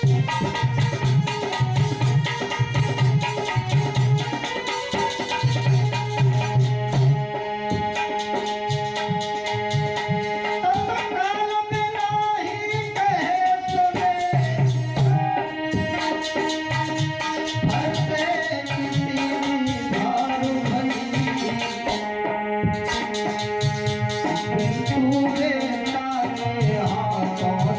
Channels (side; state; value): both; identical; correlation 1.00